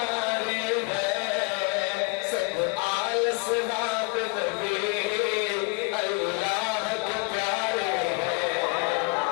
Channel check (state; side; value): quieter; right; 31.6 dB